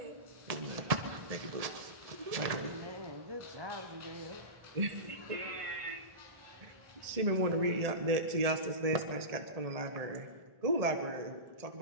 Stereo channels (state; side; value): late; left; 1.7 ms